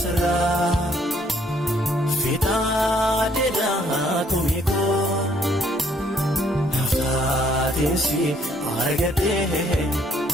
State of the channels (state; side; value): normal; both; correlation 0.66